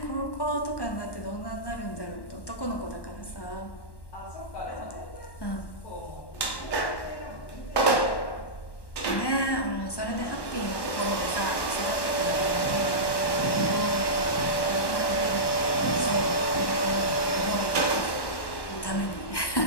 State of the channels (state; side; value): late; right; 1.1 ms